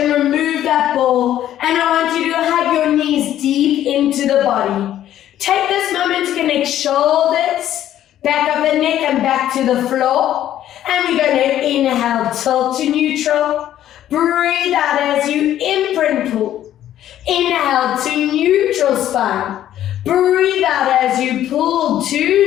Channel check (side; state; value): right; quieter; 11.9 dB